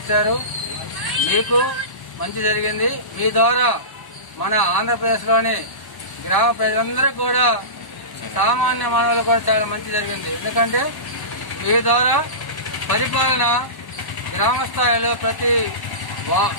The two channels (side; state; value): right; late; 1.1 ms